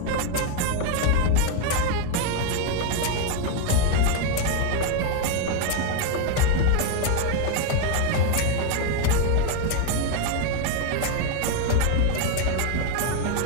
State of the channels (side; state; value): both; different; correlation 0.01